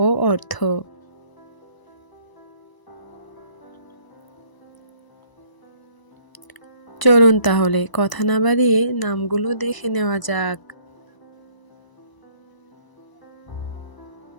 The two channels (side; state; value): right; late; 1.0 ms